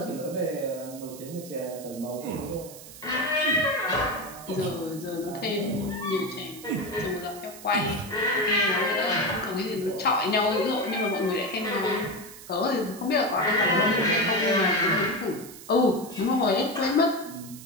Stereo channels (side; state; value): right; noise; hiss, 16 dB below the sound